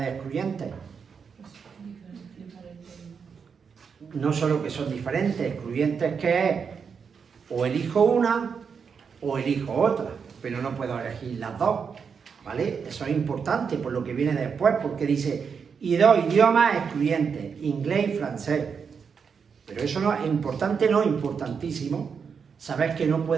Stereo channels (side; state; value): left; quieter; 6.2 dB